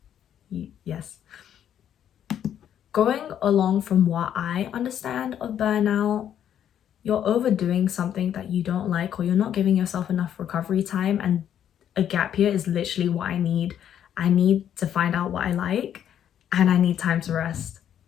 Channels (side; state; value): right; quieter; 9.8 dB